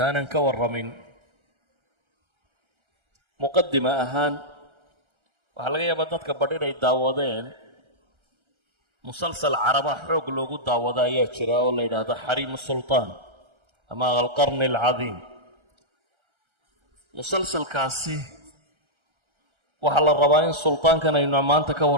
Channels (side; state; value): left; late; 1.3 ms